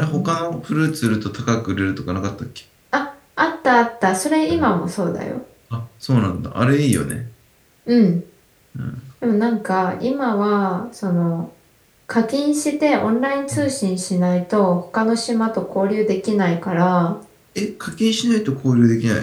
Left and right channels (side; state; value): both; identical; correlation 1.00